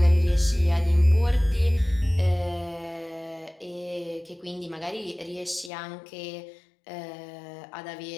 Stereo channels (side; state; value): right; drops out; at 5.7 s